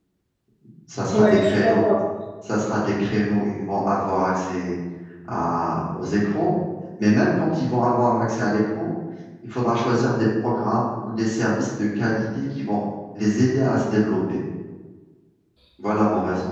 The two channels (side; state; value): both; identical; correlation 1.00